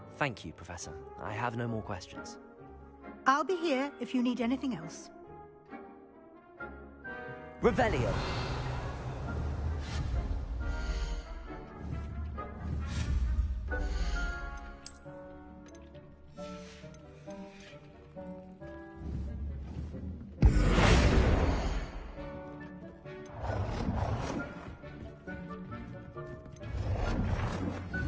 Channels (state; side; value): identical; both; correlation 1.00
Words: Thank you, Professor. I have no more questions. I'll be here if you need anything else. Revelio.